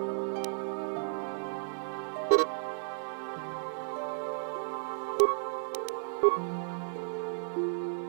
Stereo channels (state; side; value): silent; left; digital silence